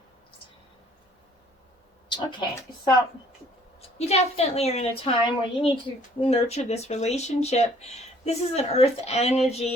Okay, so you definitely are in a time where you need to nurture this relationship. This is an earth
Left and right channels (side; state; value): both; normal; correlation 0.58